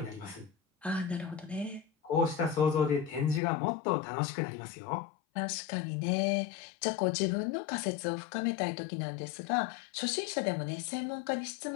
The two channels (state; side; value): drops out; right; at 3.4 s